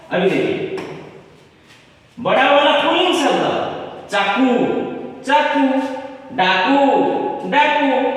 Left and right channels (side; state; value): both; identical; correlation 1.00